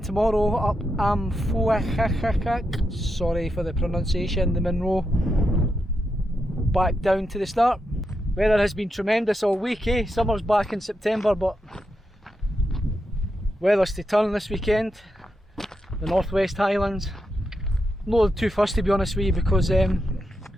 tomorrow up Am Faochagach, sorry for the pronunciation, the Munro, back down to the start. Weather has been tremendous all week, eh? Summer's back in September, but weather's to turn this weekend. The Northwest Highlands. I'm not too fussed, to be honest with you, because I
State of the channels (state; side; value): normal; both; correlation 0.85